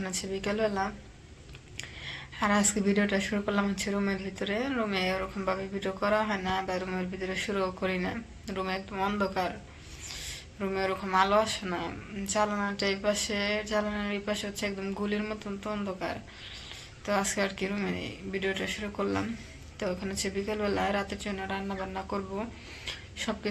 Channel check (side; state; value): both; identical; correlation 1.00